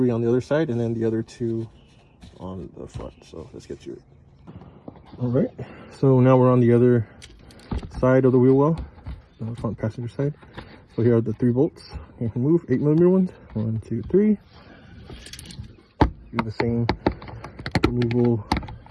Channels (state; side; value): identical; both; correlation 1.00